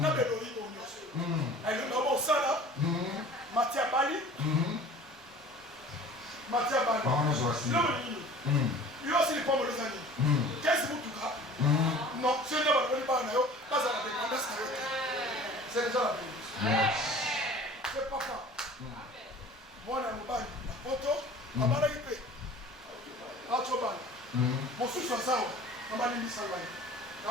belori bonyoso. Elle est au sala. Matia Bali. Il aussi les pommes les années. Qu'est-ce que vous avez? Non, ce n'est pas la dépendance. C'est déjà la bénédiction. C'est papa. Moi, je suis la photo. Je suis mon sous ça, on m'a dit ça.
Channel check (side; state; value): both; normal; correlation 0.45